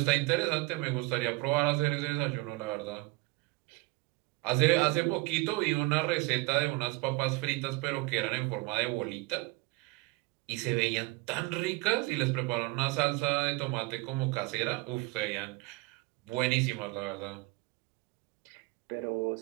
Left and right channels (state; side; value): quieter; left; 22.4 dB